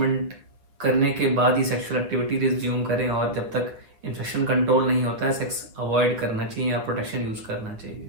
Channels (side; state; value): left; late; 8.8 ms